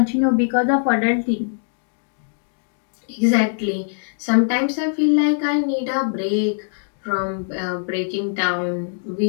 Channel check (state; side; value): silent; right; digital silence